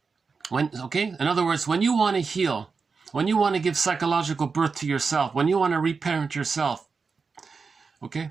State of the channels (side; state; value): left; quieter; 4.9 dB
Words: in other words, when you want to heal, when you want to give psychological birth to yourself, when you want to reparent yourself, okay?